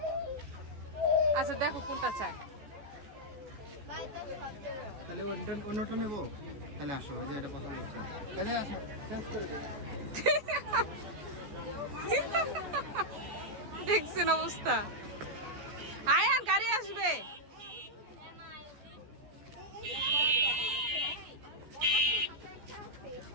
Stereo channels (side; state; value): left; late; 14 ms